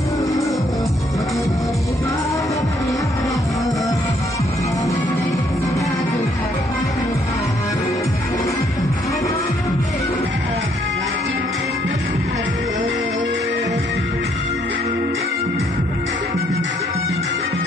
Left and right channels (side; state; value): both; normal; correlation 0.69